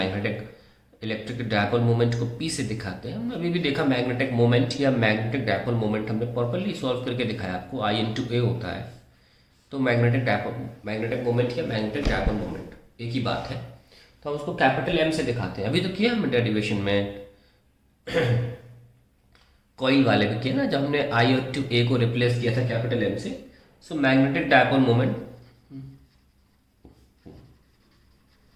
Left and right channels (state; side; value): identical; both; correlation 1.00